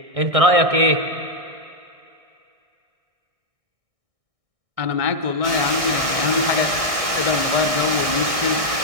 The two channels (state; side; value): late; left; 1.6 ms